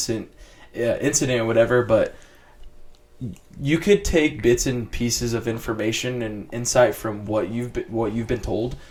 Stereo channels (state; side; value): identical; both; correlation 1.00